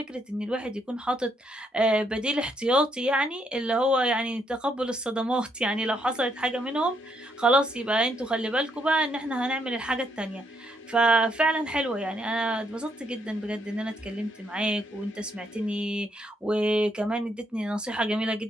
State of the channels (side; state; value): both; normal; correlation 0.74